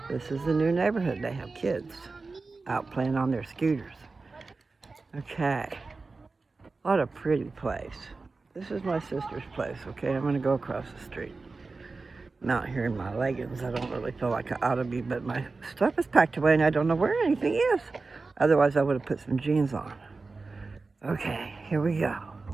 This is a new neighborhood. They have kids out playing on their scooters. Okay, what a pretty place. This is my sister's place, okay? I'm gonna go across the street. I'm out here in my leggings. I don't really feel like I ought to be, but my stuff is packed away and I don't know where anything is. Otherwise, I would have put some jeans on. Okay, here we go.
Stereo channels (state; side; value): quieter; left; 3.9 dB